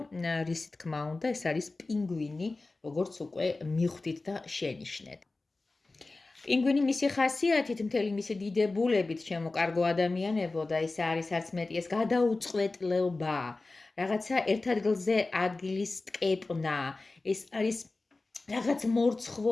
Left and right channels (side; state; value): right; quieter; 3.4 dB